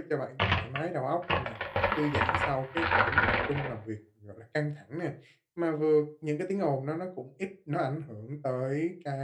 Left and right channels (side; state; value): both; identical; correlation 1.00